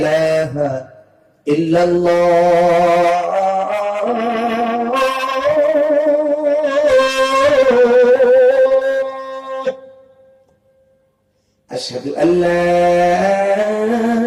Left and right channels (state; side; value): identical; both; correlation 1.00